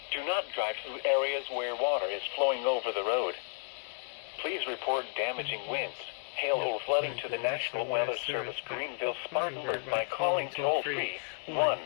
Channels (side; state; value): right; silent; digital silence